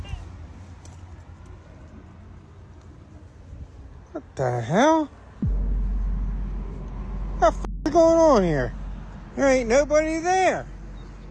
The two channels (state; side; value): identical; both; correlation 1.00